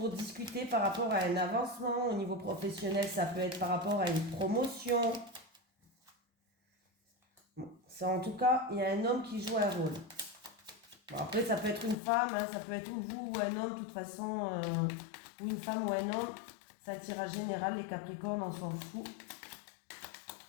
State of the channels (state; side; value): drops out; right; at 12.0 s